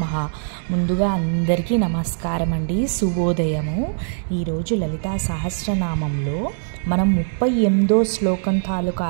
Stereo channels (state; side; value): silent; left; digital silence